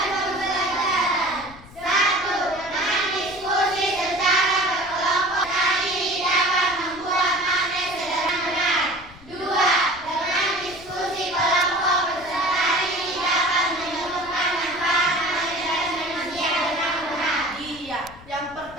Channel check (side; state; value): left; noise; rumble, 21 dB below the sound